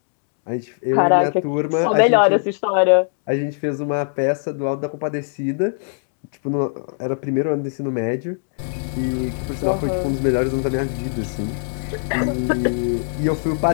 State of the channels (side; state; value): right; silent; digital silence